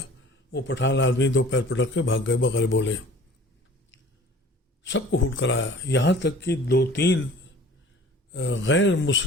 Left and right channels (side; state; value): both; normal; correlation 0.47